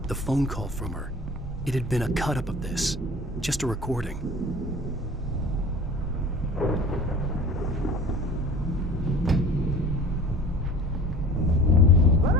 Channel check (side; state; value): both; normal; correlation 0.42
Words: The phone call from her. It had been a cut-up of this. Just a recording. Let